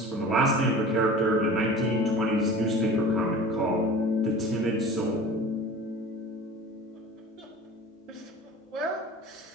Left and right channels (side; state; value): both; normal; correlation 0.39